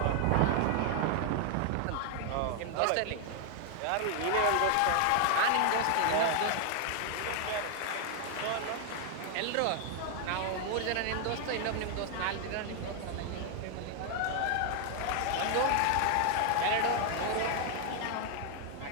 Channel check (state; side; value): different; both; correlation 0.00